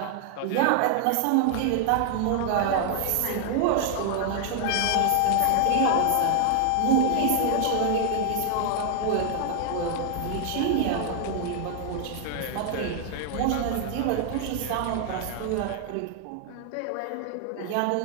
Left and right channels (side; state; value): both; different; correlation 0.00